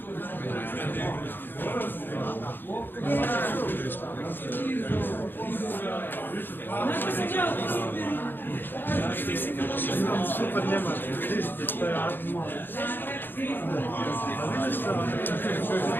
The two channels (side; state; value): right; late; 0.096 ms